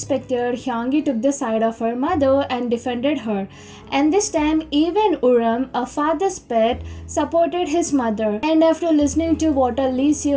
Hyungi took the side of her mother and defended her. And this time even Uram, a father's pet, supported his mother. And after listening to what Lee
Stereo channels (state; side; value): identical; both; correlation 1.00